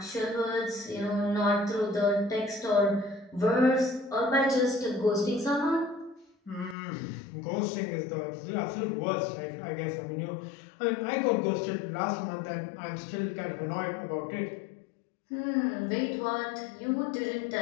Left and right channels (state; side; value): drops out; right; at 6.8 s